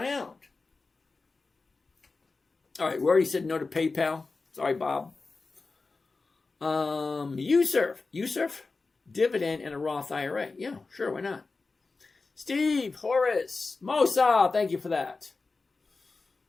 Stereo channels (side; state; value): right; quieter; 3.9 dB